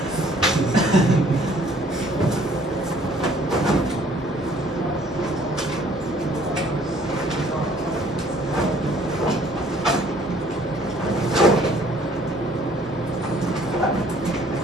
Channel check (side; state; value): both; normal; correlation 0.58